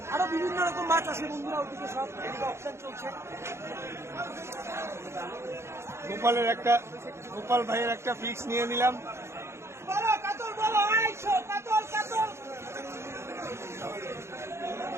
আরো বিভিন্ন রকম মাছ আছে বন্ধুরা, ওদিকে সব অপশন চলছে। গোপাল ভাইয়ের একটা ফিক্স নিয়ে নিলাম। বলো কাতল, বলো 250 কাতল কাতল।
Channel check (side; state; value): left; late; 0.13 ms